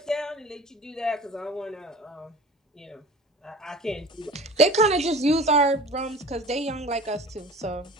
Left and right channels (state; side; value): normal; both; correlation 0.40